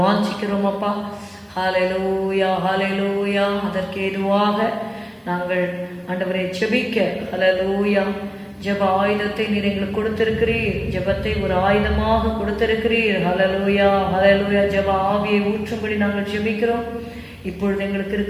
வாஞ்சிக்கிறோம் அப்பா. ஹalleluya, ஹalleluya. அதற்கு ஏதுவாக நாங்கள் ஆண்டவரை ஜெபிக்க, ஹalleluya, ஜெப ஆயுதத்தை நீர் எங்களுக்கு கொடுத்திருக்கிறீர். ஜெபத்தை ஒரு ஆயுதமாக கொடுத்திருக்கிறீர். ஹalleluya, ஹalleluya. ஜெப ஆவியை ஊற்றும்படி நாங்கள் ஜெபிக்கிறோம். இப்பொழுது எங்களுக்கு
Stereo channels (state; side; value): identical; both; correlation 1.00